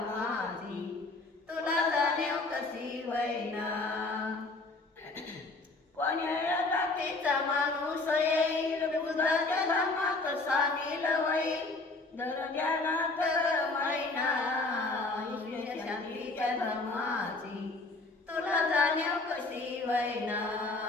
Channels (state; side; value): quieter; right; 3.3 dB